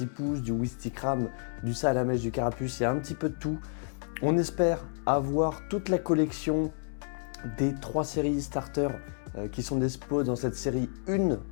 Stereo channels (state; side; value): silent; right; digital silence